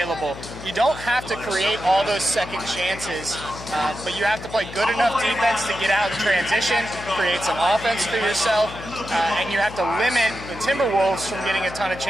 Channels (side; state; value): left; noise; hum, 13 dB below the sound